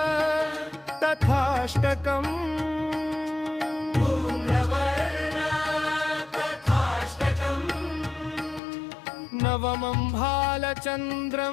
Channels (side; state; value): right; drops out; at 8.6 s